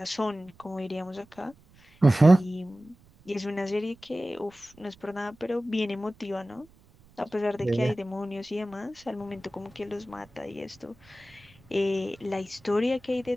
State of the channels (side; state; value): right; noise; rumble, 28 dB below the sound